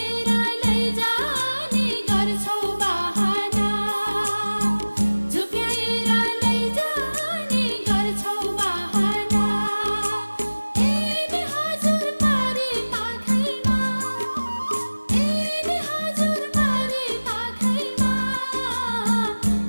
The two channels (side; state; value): both; inverted; correlation -1.00